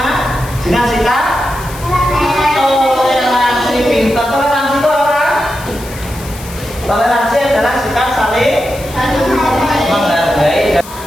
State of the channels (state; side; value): noise; left; hiss, 16 dB below the sound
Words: Dengan sikap toleransi. Pintar. Toleransi itu apa? Toleransi adalah sikap saling menghargai.